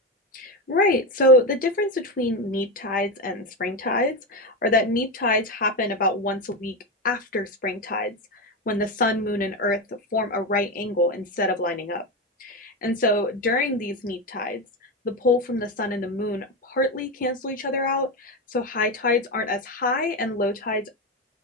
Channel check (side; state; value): both; normal; correlation 0.15